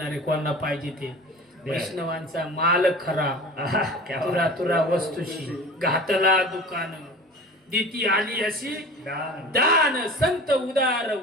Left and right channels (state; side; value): normal; both; correlation 0.38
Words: कोणाला पाहिजे ते वैष्णवांचा माल खरा क्या तुरा तुरा वस्तूशी घातला दुकान दिती आली अशी दान. दान संत उदार